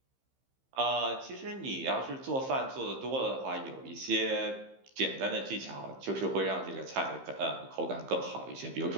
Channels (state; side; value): late; left; 15 ms